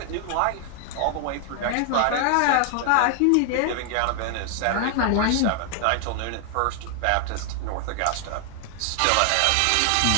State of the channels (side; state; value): both; different; correlation 0.00